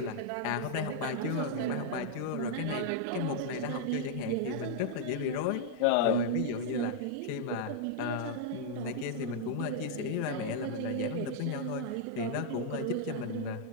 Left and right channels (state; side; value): different; both; correlation -0.01